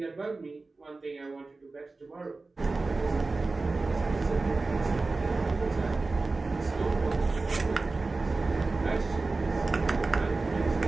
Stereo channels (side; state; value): left; quieter; 3.6 dB